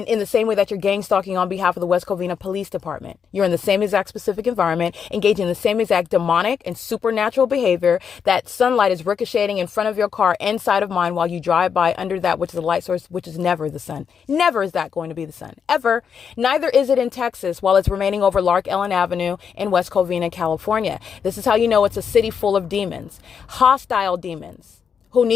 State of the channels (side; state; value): right; quieter; 6.9 dB